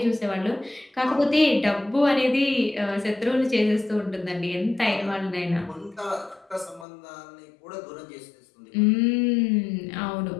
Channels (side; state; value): right; drops out; at 6.9 s